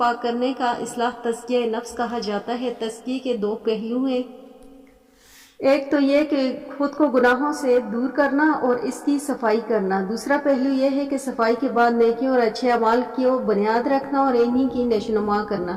کرنے کا اصلاح تزکیہ نفس کہا جاتا ہے۔ تزکیے کے 2 پہلو ہیں، ایک تو یہ کہ خود کو گناہوں سے دور کرنا اور اس کی صفائی کرنا، دوسرا پہلو یہ ہے کہ صفائی کے بعد نیکیوں اور اچھے اعمال کی بنیاد رکھنا اور انہی کی نشوونما کرنا۔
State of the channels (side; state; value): both; identical; correlation 1.00